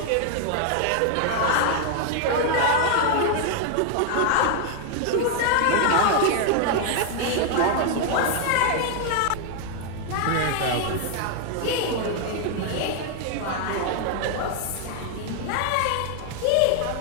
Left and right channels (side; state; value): both; different; correlation 0.00